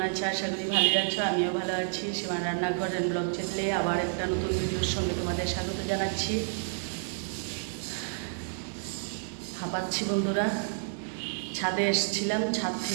আছো? আশা করি ভালোই আছো। আমিও ভালো আছি। সীমার রান্নাঘর এন্ড ব্লগ চ্যানেলে আবার একটা নতুন ভিডিওর সঙ্গে তোমাদের স্বাগত জানাচ্ছি। হাঁপাচ্ছি বন্ধুরা, ছাদে এসেছিলাম, ছাদ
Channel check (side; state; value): left; silent; digital silence